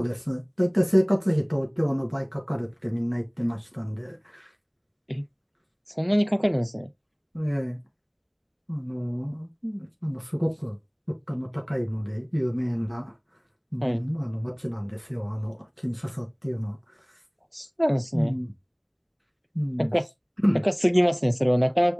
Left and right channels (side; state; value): both; identical; correlation 1.00